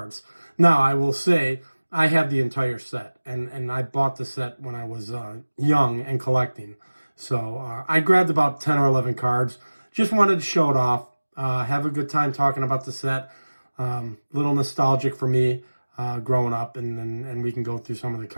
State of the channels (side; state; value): both; inverted; correlation -1.00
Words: Now, I will say, I have the entire set, and I bought the set when I was young and collecting. So I grabbed about 10 or 11 cards. Just wanted to show it off. Have a good time talking about the set. Little nostalgic for me growing up, and we can go through some of the